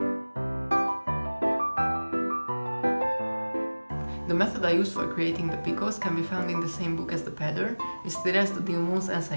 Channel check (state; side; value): inverted; both; correlation -1.00